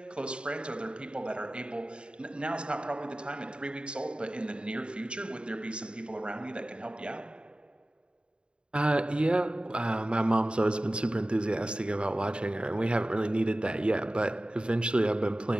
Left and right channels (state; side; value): late; left; 0.053 ms